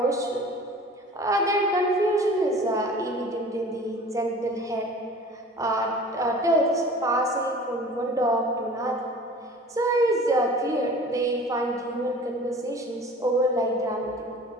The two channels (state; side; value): normal; both; correlation 0.43